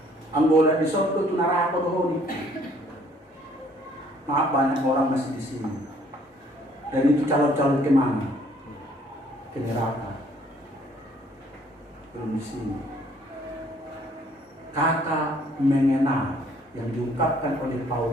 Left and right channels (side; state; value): both; normal; correlation 0.61